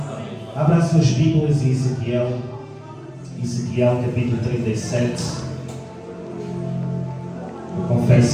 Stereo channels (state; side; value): identical; both; correlation 1.00